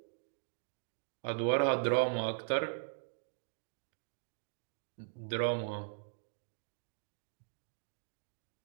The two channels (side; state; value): left; silent; digital silence